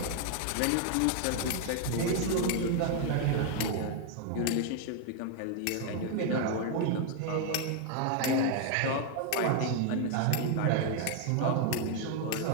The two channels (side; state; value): both; different; correlation 0.00